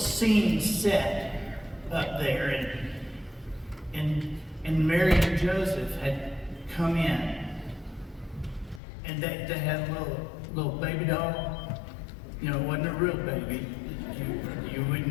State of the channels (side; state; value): right; drops out; at 8.8 s